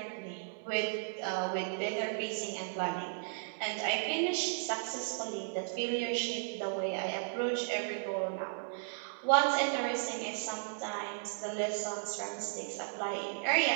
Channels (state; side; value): silent; left; 54 dB below the other